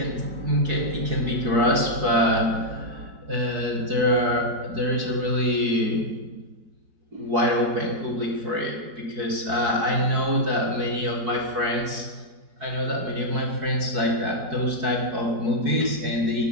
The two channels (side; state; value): left; late; 4.7 ms